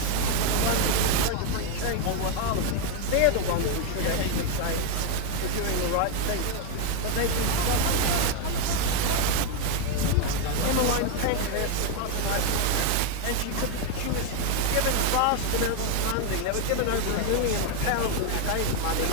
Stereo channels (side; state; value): both; different; correlation 0.01